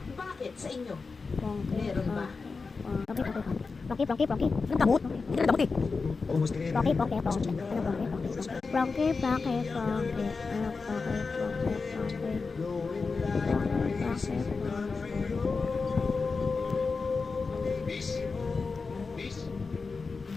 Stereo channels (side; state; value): right; quieter; 4.4 dB